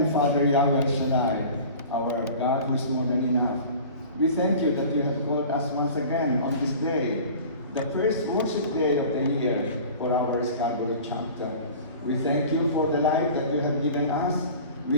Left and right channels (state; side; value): inverted; both; correlation -0.41